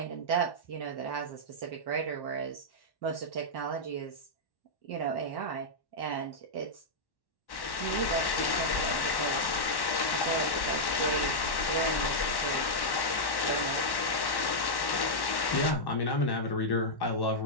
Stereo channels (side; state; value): right; late; 1.1 ms